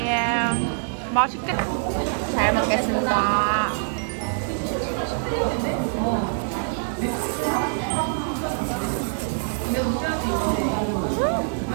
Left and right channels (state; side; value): silent; left; digital silence